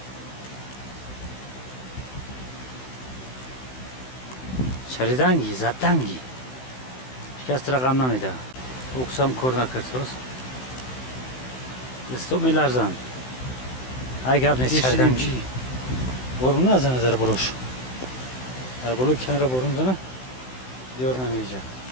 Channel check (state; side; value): late; right; 16 ms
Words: شریدنگی زدنگی شکست رقم نمیده اکسام کار نکرد راست دستو میلرزن اگر نیست شریدنگی بارون نزنه در بروش در بلو کنار بارون زنه دیار نمیجه